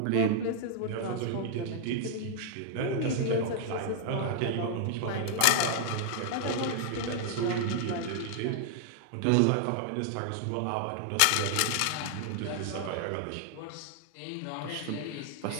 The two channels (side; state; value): both; different; correlation 0.00